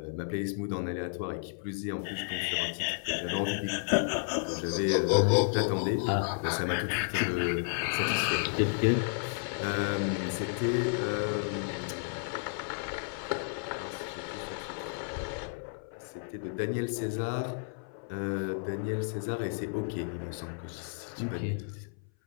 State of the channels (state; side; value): silent; right; 56 dB below the other